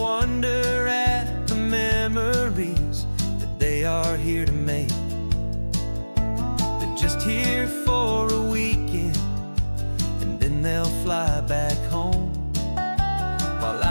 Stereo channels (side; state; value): both; inverted; correlation -1.00